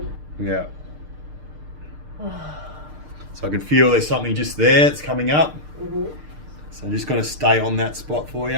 Yeah. So I can feel there's something just there, it's coming up. So I'm just going to stay on that spot for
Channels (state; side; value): late; left; 6.6 ms